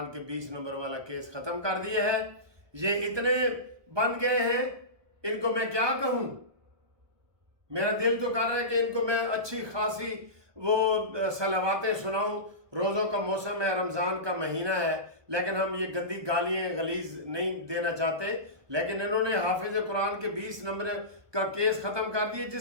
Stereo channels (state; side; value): late; left; 1.2 ms